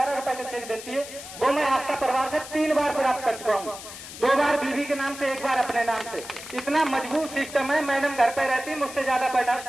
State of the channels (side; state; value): left; noise; hiss, 13 dB below the sound